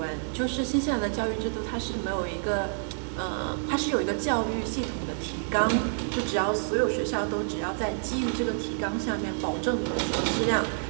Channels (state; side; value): silent; left; 57 dB below the other